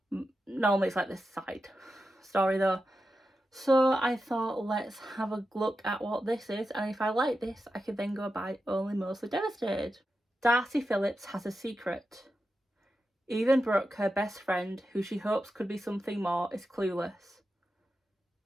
Normally it's like this side story though. So I thought, let's have a look at what this is, and if I like this, I can then go buy Only Mostly Devastated. Darcy Phillips has a secret. Even Brooke, her best friend, who she hopes could be something more, is clueless.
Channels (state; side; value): normal; both; correlation 0.90